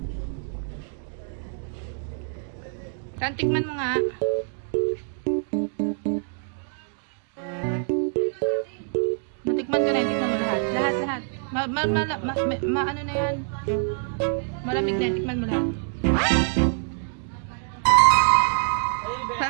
Tan, tikman mo nga. Natikman ko na yun, tikman mo lahat. Lahat. Ano na yan? Malamig na, tikman mo lahat.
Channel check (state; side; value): silent; left; 61 dB below the other